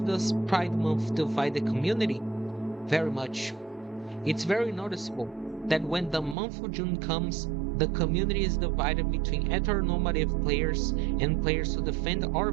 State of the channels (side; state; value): left; drops out; at 6.4 s